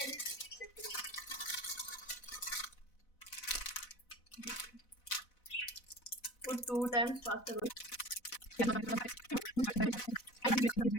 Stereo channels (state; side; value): late; right; 4.0 ms